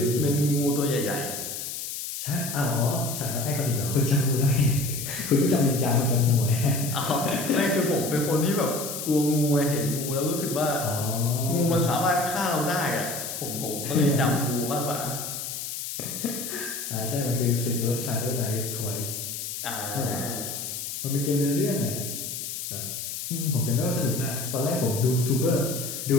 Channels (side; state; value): left; noise; hiss, 6 dB below the sound